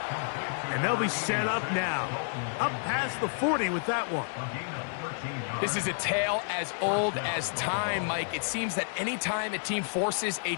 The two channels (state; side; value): silent; right; digital silence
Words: And they'll be set up now. Up past the 40 with that one. This is a tale as old as time, Mike. It seems that anytime a team forces a